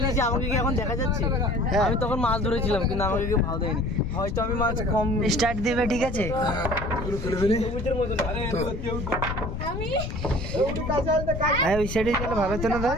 আমাকে কি এখন দেখা যাচ্ছে আমি তখন মাছ ধরেছিলাম কিন্তু আমাকে কেউ ভালো দেয়নি হয়তো আমি মাছ কম স্টার্ট দিবে ঠিক আছে হ্যাঁ ওই সাইডে গেলে ভালো হতো না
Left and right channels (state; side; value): noise; left; rumble, 5 dB below the sound